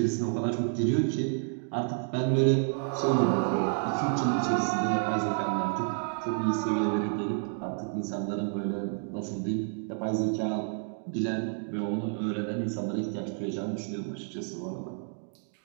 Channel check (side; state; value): left; silent; 58 dB below the other